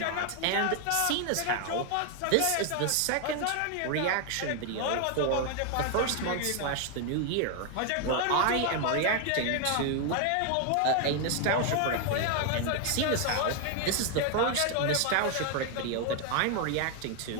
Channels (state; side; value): different; both; correlation 0.01